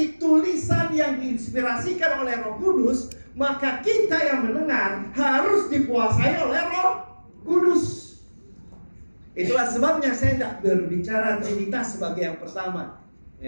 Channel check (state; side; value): inverted; both; correlation -1.00